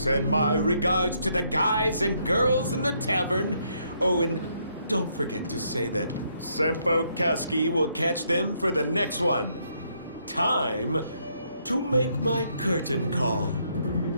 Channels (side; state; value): both; inverted; correlation -0.73